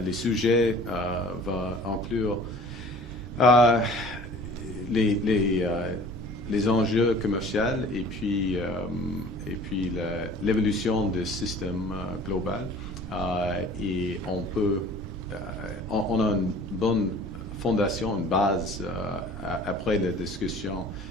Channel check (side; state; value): both; normal; correlation 0.47